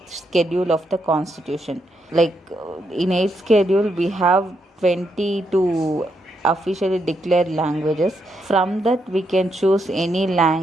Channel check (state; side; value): normal; both; correlation 0.79